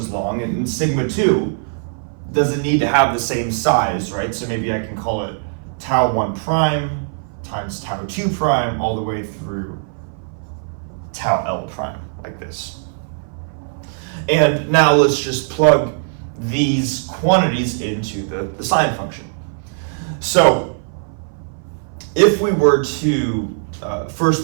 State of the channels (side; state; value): left; silent; 58 dB below the other